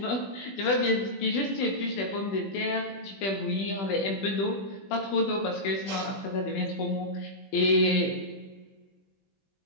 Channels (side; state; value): right; late; 20 ms